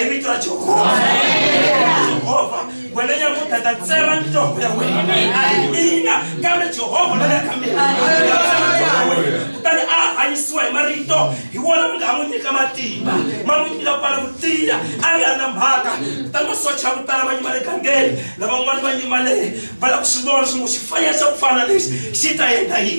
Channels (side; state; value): both; inverted; correlation -1.00